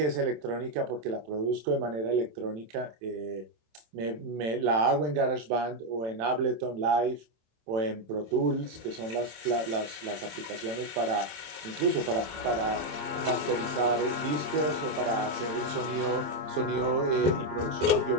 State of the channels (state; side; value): late; left; 27 ms